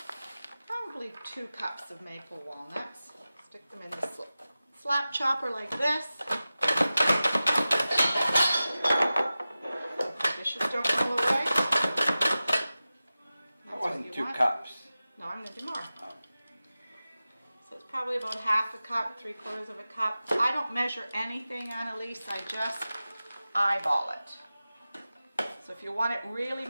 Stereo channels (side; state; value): both; inverted; correlation -0.95